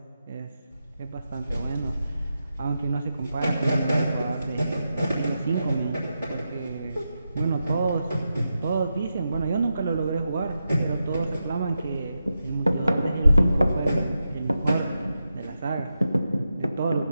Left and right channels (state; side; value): inverted; both; correlation -0.88